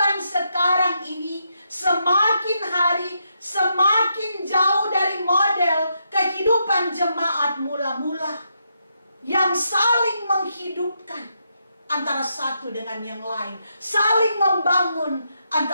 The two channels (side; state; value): both; inverted; correlation -0.80